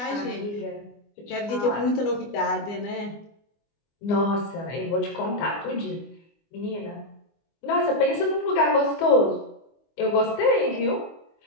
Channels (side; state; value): right; late; 24 ms